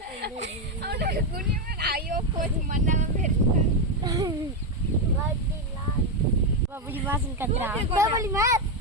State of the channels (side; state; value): both; normal; correlation 0.07